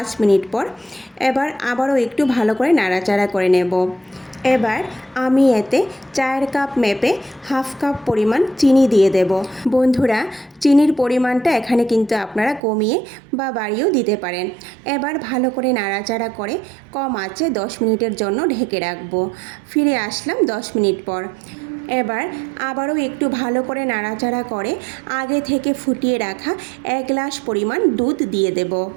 মিনিট পর। এবার আবারও একটু ভালো করে নাড়াচাড়া করে নেব। এবার আমি এতে 4 কাপ মেপে হাফ কাপ পরিমাণ চিনি দিয়ে দেব। বন্ধুরা, চিনির পরিমাণটা এখানে কিন্তু আপনারা কমিয়ে বা বাড়িয়েও দিতে পারেন। এবার ভালো করে নাড়াচাড়া করে কম আঁচে 10 মিনিটের জন্য ঢেকে রাখব। ফিরে আসলাম 10 মিনিট পর। এবার আবারও একটু ভালো করে নাড়াচাড়া করে আগে থেকে ফুটিয়ে রাখা 1 গ্লাস পরিমাণ দুধ দিয়ে দেব।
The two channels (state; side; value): drops out; left; at 12.6 s